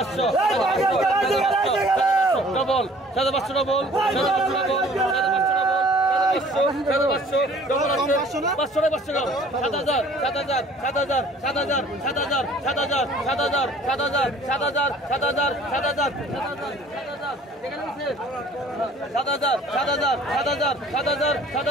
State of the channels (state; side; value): normal; both; correlation 0.53